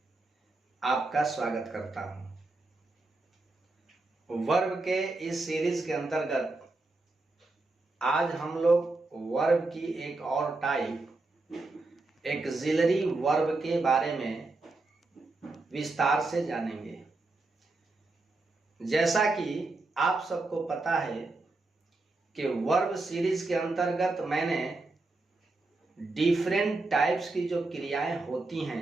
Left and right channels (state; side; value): quieter; left; 3.2 dB